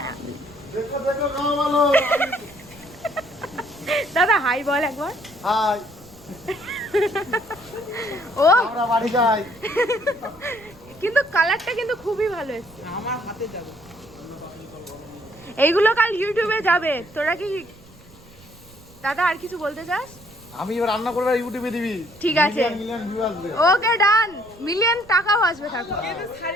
দাদা হাই বল একবার। হাই ও আমরা বাড়ি যাই। কিন্তু কালারটা কিন্তু খুবই ভালো এসেছে। আমার হাতে যাবে এইগুলো কাল ইউটিউবে যাবে। তোরা কি দাদা আর কিছু বলতে চাস? আমি এবার রান্না করবে আর ইউটিউবে দিবি। ঠিক আছে মিলিয়ন ভিউ আসবে। ওকে ডান। মিলিয়ন টাকাও আসবে থাকো।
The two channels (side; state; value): right; noise; rumble, 24 dB below the sound